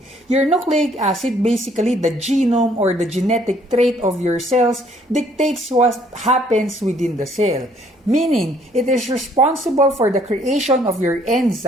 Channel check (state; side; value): normal; both; correlation 0.63